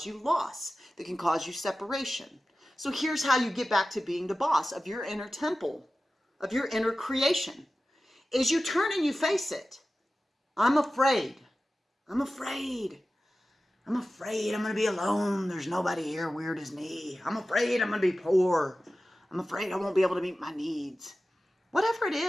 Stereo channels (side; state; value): both; normal; correlation 0.95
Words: you loss, that can cause you separation. So here's how you get back to being the boss of your inner temple, of your inner creation, is you turn and you face it. I'm afraid. I'm afraid. I'm afraid I'm going to be alone. There's nobody here weird as me. I'm afraid I'm going to be poor. I'm afraid I won't be able to meet my needs. Whatever it